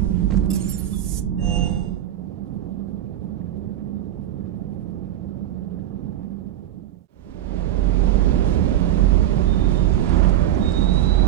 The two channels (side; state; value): left; quieter; 12.3 dB